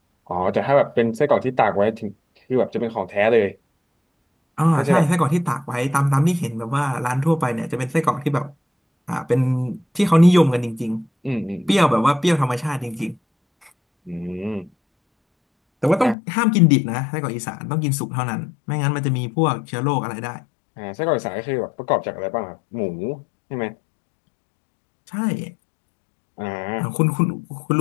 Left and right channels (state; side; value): drops out; right; at 16.2 s